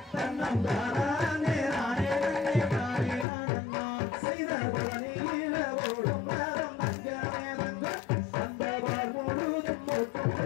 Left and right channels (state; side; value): drops out; right; at 3.2 s